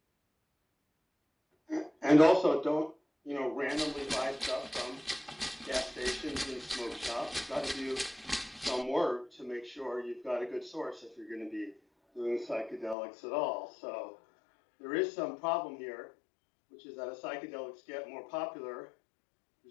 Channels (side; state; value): right; drops out; at 13.0 s